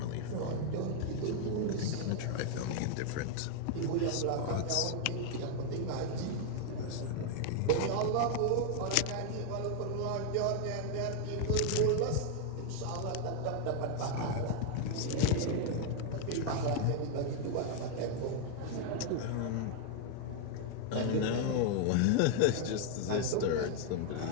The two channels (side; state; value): both; different; correlation 0.00